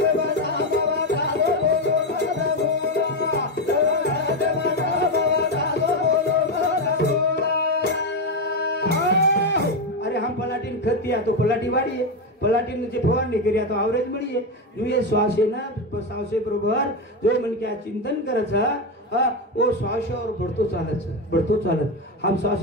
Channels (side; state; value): both; normal; correlation 0.11